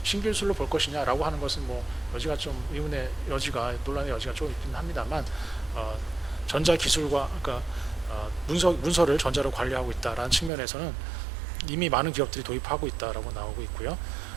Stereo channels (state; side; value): drops out; left; at 10.5 s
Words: 신기술로 볼 것이냐라고 하는 것은 여지가 좀 의문의 여지가 논란의 여지가 좀 있긴 합니다만 전자 기술과 그러니까 문서를 전자로 관리하고 있다라는 측면에서는 이미 많은 기업들이 도입하고 있다라고 나오고 있고요.